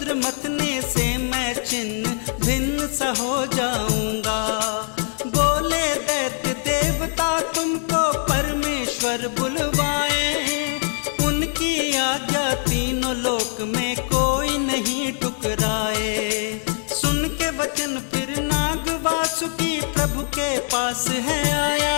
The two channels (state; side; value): silent; right; 64 dB below the other